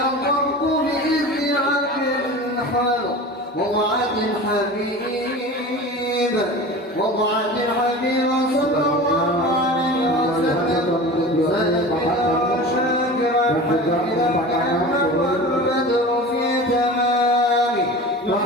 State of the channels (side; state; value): both; normal; correlation 0.35